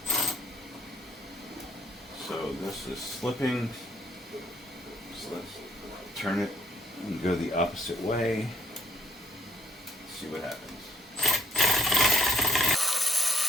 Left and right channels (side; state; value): both; normal; correlation 0.65